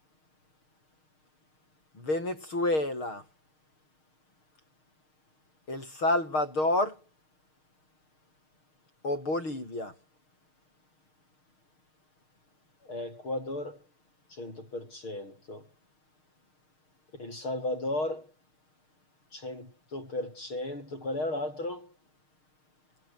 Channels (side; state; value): right; late; 6.5 ms